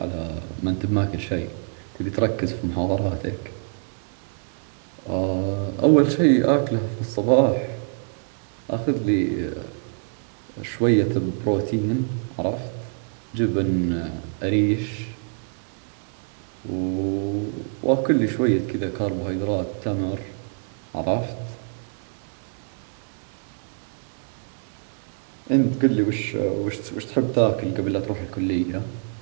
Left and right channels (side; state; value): left; silent; 62 dB below the other